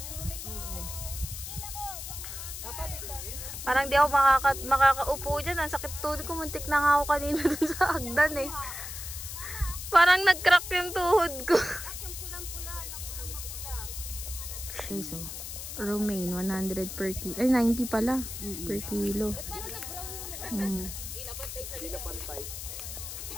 Parang di ako makakaupo dyan. Ang sakit tuhod ko. Muntik na nga ako kanina dun sa hagdan eh. Parang nag-crack yung tuhod ko. Okay, so romaine 100 per kilo. Ay, 90 pala per kilo.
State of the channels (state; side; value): noise; left; hiss, 8 dB below the sound